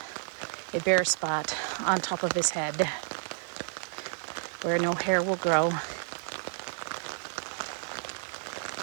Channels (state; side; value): silent; left; digital silence